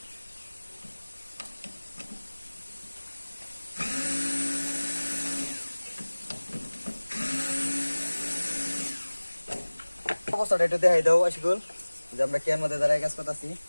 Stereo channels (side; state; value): both; inverted; correlation -1.00